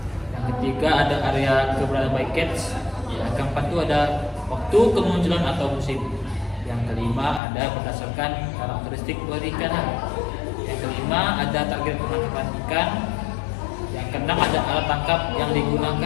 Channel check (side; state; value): right; drops out; at 7.4 s